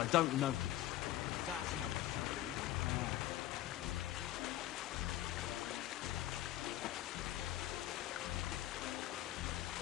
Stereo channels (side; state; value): right; quieter; 14.3 dB